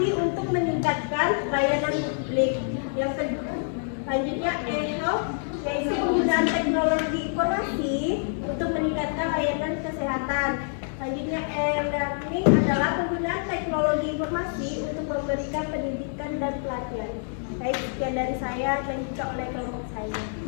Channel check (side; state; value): right; silent; digital silence